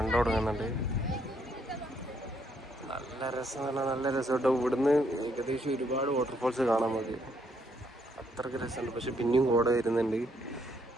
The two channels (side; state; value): both; normal; correlation 0.72